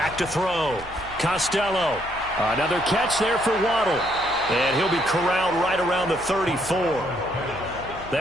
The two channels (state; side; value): noise; right; hum, 18 dB below the sound